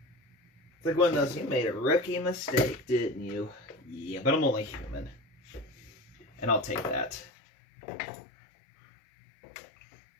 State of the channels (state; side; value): drops out; right; at 7.3 s